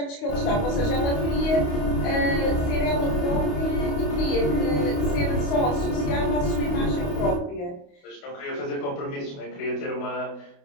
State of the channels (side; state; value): right; late; 28 ms